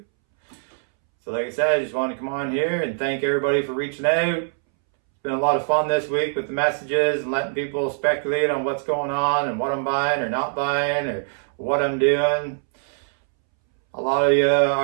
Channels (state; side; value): silent; left; 64 dB below the other